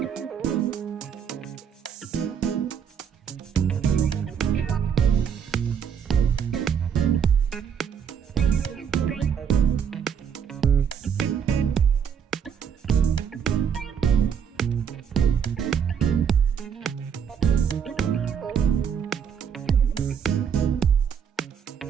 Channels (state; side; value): quieter; left; 7.6 dB